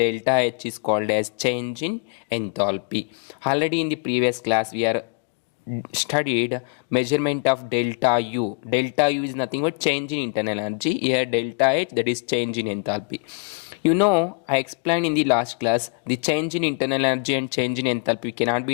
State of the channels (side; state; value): right; quieter; 35.4 dB